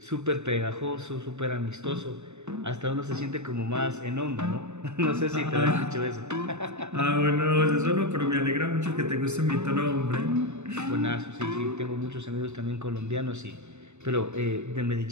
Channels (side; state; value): left; late; 0.82 ms